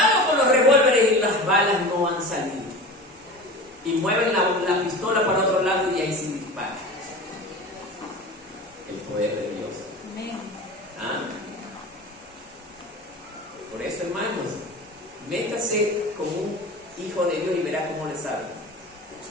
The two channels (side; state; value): both; normal; correlation 0.33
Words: con los revólveres y las balas no han salido. Y mueven la pistola para otro lado y ahí se dispara. El poder de Dios. ¿Ah? Por eso, hermanos, métase con un hijo de Dios y verá cómo le sale.